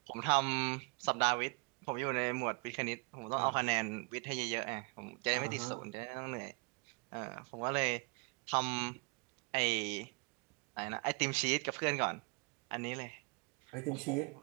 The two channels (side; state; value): left; quieter; 31.9 dB